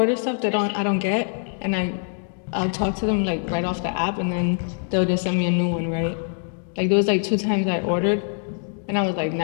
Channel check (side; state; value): right; silent; 56 dB below the other